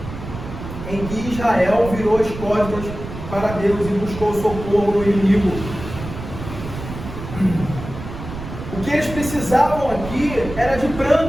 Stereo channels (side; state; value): right; noise; rumble, 10 dB below the sound